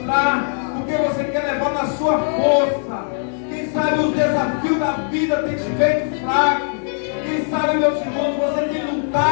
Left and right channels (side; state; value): right; silent; digital silence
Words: porque você quer levar na sua força. Quem sabe os desafios da vida têm te feito fraco. Quem sabe, meus irmãos, você tem